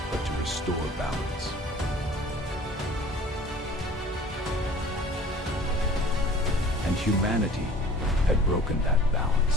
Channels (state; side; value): normal; both; correlation 0.48